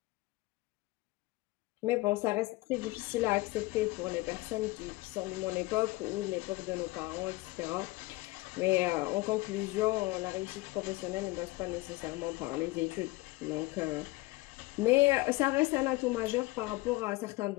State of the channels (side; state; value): right; quieter; 21.7 dB